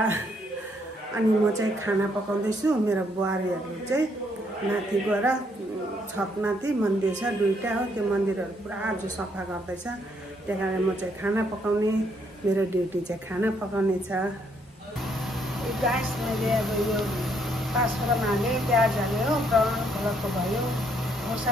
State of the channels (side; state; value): both; normal; correlation 0.70